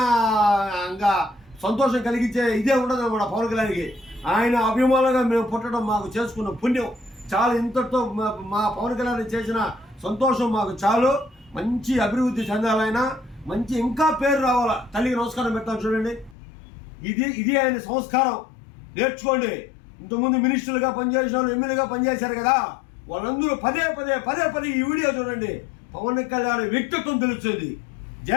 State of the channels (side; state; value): right; drops out; at 16.4 s